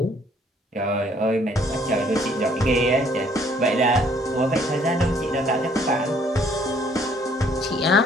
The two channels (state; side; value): normal; both; correlation 0.62